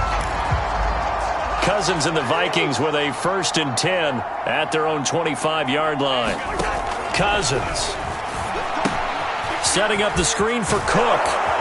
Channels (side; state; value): both; identical; correlation 1.00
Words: Cousins and the Vikings with a 1st and 10 at their own 25-yard line. Cousins setting up the screen for Cook.